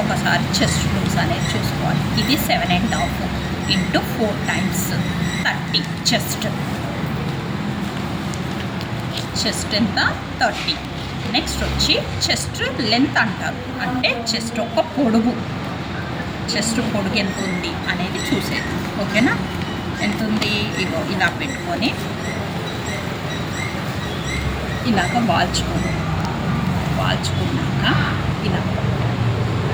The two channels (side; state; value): both; identical; correlation 1.00